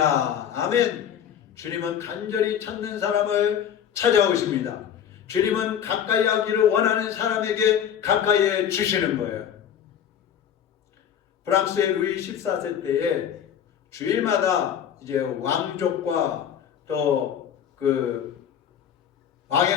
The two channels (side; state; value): right; quieter; 9.0 dB